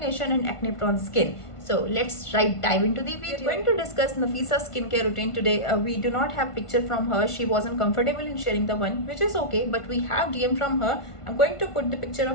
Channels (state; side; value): late; right; 1.5 ms